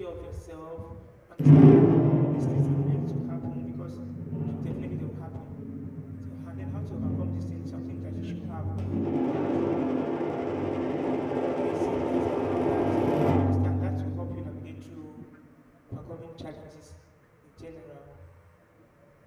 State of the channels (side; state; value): both; identical; correlation 1.00